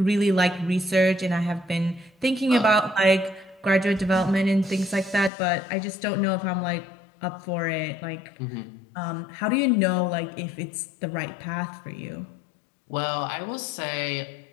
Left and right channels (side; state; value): right; drops out; at 5.3 s